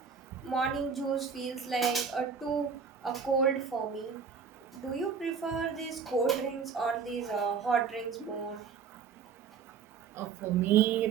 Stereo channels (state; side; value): quieter; left; 6.2 dB